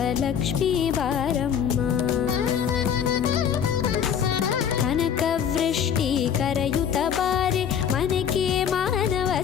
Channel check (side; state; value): right; quieter; 8.1 dB